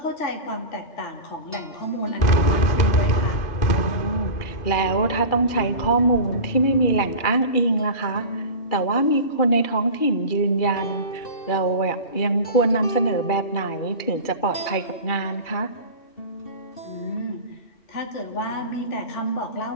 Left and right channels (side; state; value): right; late; 2.3 ms